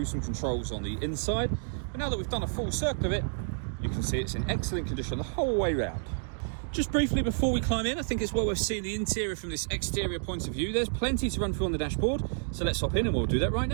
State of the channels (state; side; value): silent; left; digital silence